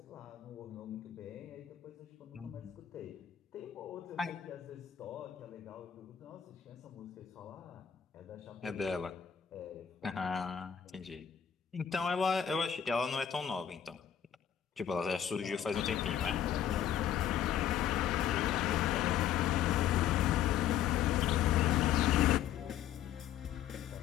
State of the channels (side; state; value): right; quieter; 9.6 dB